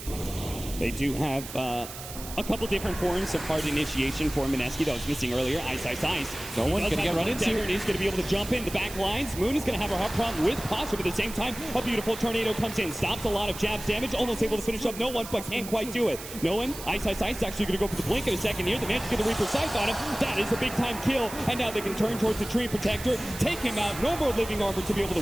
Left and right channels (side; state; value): right; noise; hiss, 12 dB below the sound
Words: They do have a couple different forms of hard initiation for Mineski that was missing earlier. Ice. No one's going to get run into. He's going to be able to jump in the back lines. Moon is going to have a hard problem with Pasha, but at the same time, a beautiful tornado comes in, stops a lot of jabs damage, almost able to finish up no one, but can't quite do it. No one. Ice is actually going to go for the blink in a second here. The man's going to Reaper Sight on him. That is a big time kill, and now they can turn towards the Tree Protector, take him out. No more living armor to be able